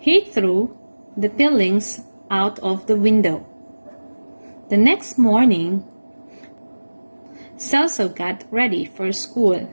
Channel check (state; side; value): inverted; both; correlation -1.00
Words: threw the peelings out of the window. The next morning, Celso got ready for school.